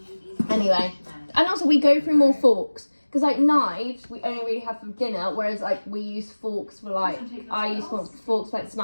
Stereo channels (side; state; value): both; inverted; correlation -1.00